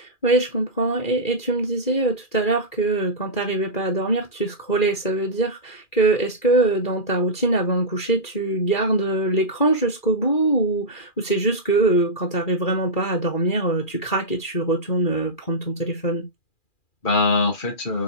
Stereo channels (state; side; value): late; right; 2.4 ms